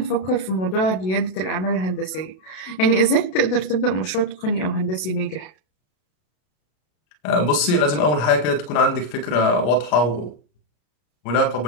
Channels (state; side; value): late; right; 32 ms